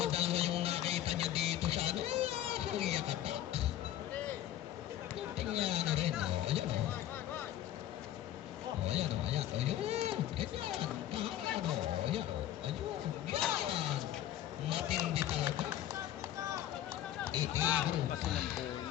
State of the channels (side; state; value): right; quieter; 12.4 dB